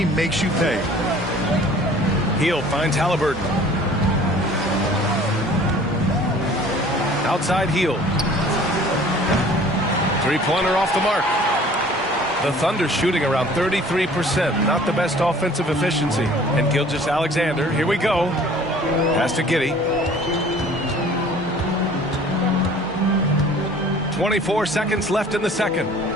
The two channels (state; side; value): normal; both; correlation 0.50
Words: makes you pay. Hield finds Halliburton. Outside Hield. Three-pointer off the mark. The Thunder shooting around 33%. Not the best offensive efficiency. And Gilgeous-Alexander, here we go. Pass to Giddey. 24 seconds left in the second.